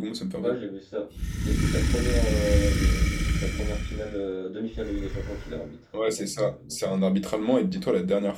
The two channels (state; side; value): identical; both; correlation 1.00